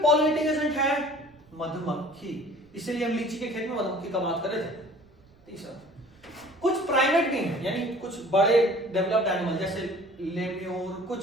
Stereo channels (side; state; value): right; noise; rumble, 29 dB below the sound